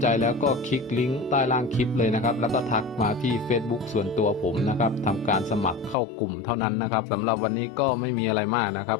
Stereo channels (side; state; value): right; drops out; at 6.0 s